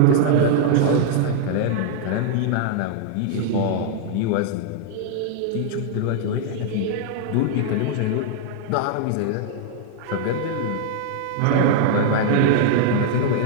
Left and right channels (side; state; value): both; different; correlation -0.01